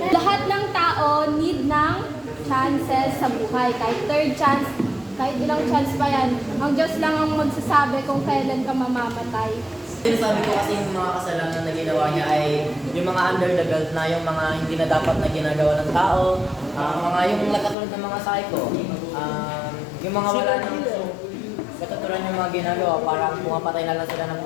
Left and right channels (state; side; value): drops out; right; at 17.8 s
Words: Lahat ng tao need ng chances sa buhay. Kahit third chance, kahit ilang chance pa yan. Ang Diyos lang ang magsasabi kung kailan ka mamamatay. Sabi ko kasi yung mga kasalanan na ginawa niya ay yung mga under the belt na, yung mga hindi na dapat na ginagawa ng tao, mga yung katulad ng mga psycho, yung mga wala nang katulad yung mga ginagawa, parang pumapatay na lang sila ng